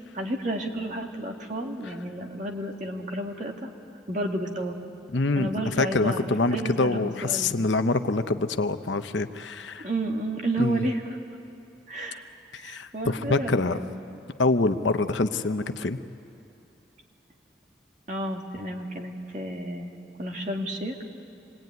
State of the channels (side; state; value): both; normal; correlation 0.40